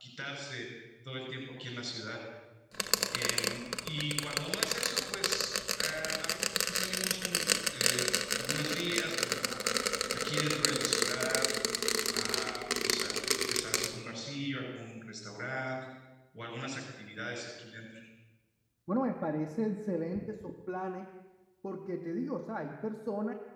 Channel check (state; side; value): identical; both; correlation 1.00